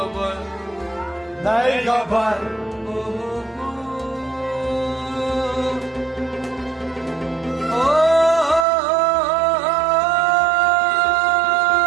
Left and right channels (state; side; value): drops out; left; at 8.7 s